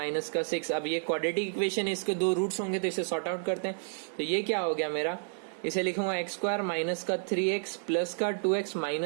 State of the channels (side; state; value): left; silent; digital silence